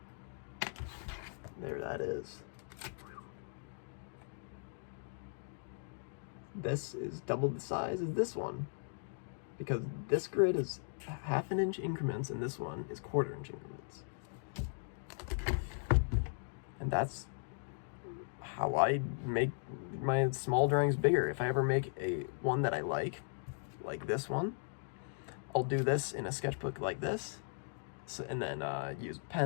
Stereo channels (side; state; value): right; silent; digital silence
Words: There that is. This is double the size as this one, because this grid is 1/2-inch increments and this one is 1/4-inch increments. And that's how I make my small drawings bigger. If I ever make a one that I like this one, I'll do this in a sketchbook like this, and then use